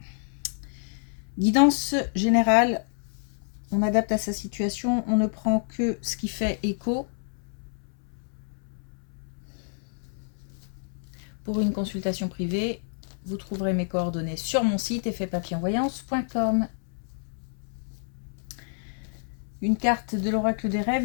Guidance générale. On adapte à sa situation. On ne prend que ce qui fait écho. Pour une consultation privée, vous trouverez mes coordonnées sur mon site effetpapillonvoyance.com. Une carte de l'oracle des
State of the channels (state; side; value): silent; right; 59 dB below the other